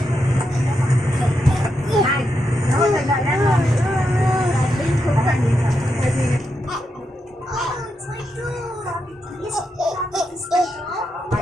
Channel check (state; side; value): normal; both; correlation 0.84